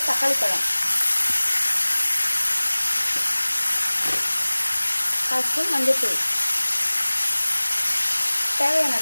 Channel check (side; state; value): both; inverted; correlation -1.00